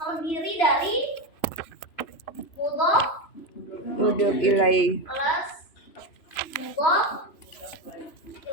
dari mudhof ilaih plus mudhof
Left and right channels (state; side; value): late; right; 3.0 ms